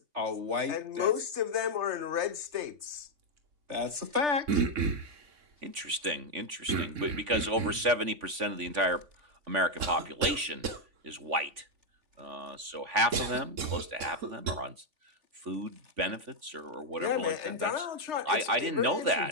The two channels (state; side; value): late; left; 3.5 ms